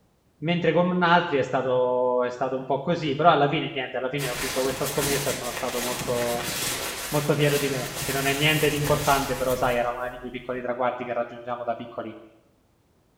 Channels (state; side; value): identical; both; correlation 1.00